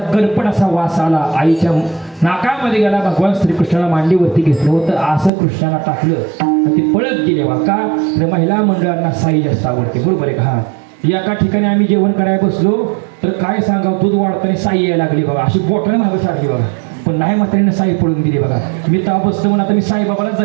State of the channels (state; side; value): drops out; left; at 5.3 s